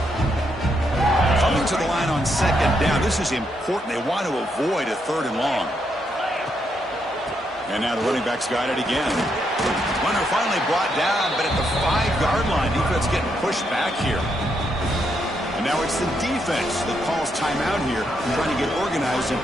Coming to the line on second down. This is important. They want to avoid a third and long. And now the running back's got it again. Runner finally brought down, but at the 5-yard line, defense getting pushed back here. And now it's the defense that calls timeout here, trying to get organized and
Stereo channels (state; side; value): normal; both; correlation 0.78